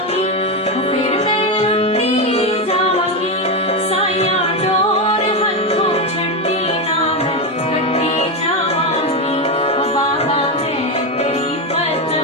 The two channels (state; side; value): normal; both; correlation 0.11